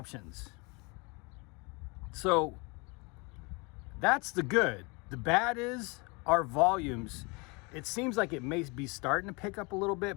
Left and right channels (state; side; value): quieter; right; 29.0 dB